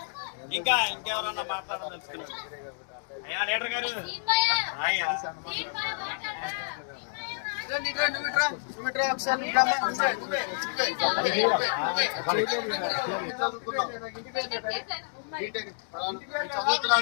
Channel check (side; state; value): right; silent; digital silence